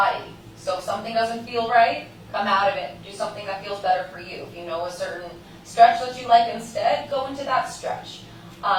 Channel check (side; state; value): both; identical; correlation 1.00